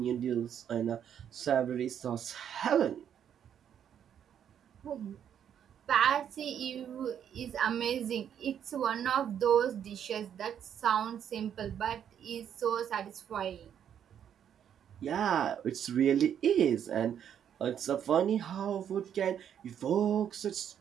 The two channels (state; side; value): quieter; left; 9.1 dB